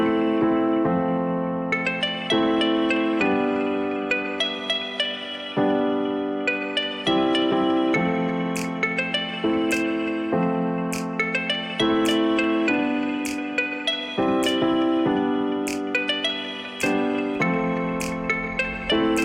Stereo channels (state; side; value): identical; both; correlation 1.00